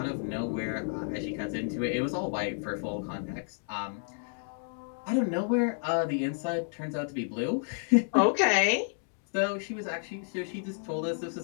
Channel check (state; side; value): silent; right; 57 dB below the other